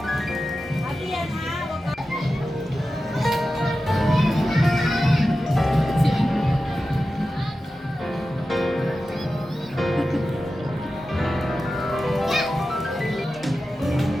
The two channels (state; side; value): normal; both; correlation 0.93